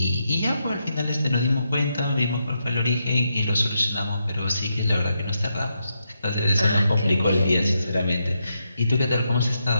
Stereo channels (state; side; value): inverted; both; correlation -0.82